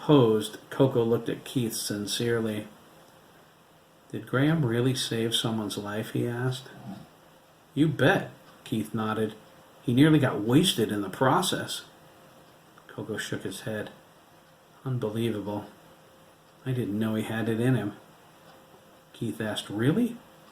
Coco looked at Keith sincerely. Did Graham really save someone's life, he asked. You bet, Keith nodded. He nearly got wasted in the process. Coco shook his head. Unbelievable. I didn't know he had it in him. Keith asked, really?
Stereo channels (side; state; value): both; identical; correlation 1.00